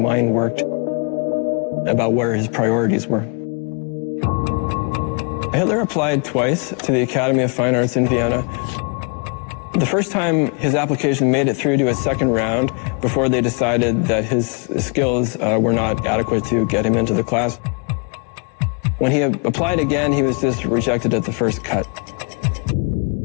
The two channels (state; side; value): quieter; right; 37.4 dB